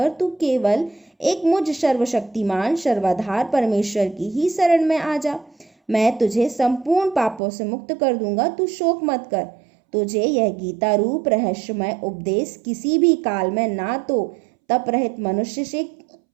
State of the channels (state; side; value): drops out; left; at 7.4 s